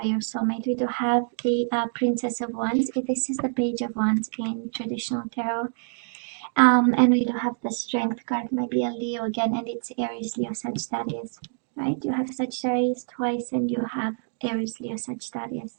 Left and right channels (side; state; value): left; silent; 61 dB below the other